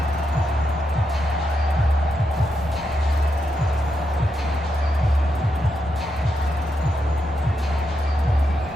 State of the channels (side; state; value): both; normal; correlation 0.84